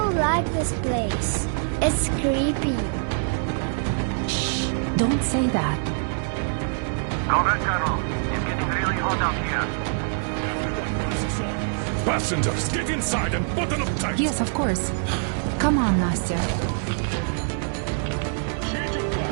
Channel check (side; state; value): left; silent; digital silence